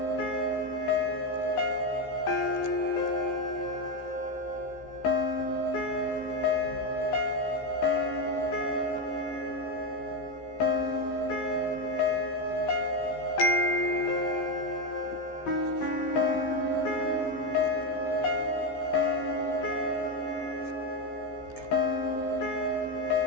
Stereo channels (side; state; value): right; late; 15 ms